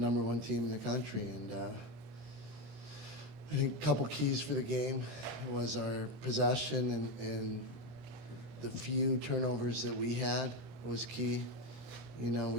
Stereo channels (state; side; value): late; left; 26 ms